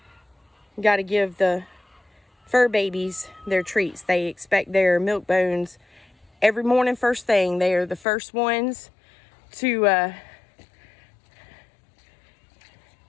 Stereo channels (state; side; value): drops out; right; at 8.1 s